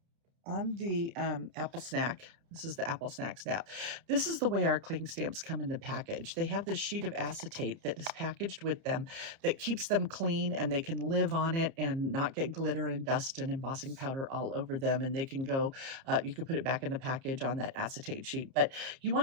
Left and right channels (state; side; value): late; left; 30 ms